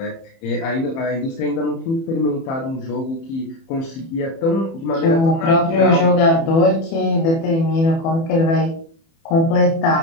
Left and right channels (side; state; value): right; late; 30 ms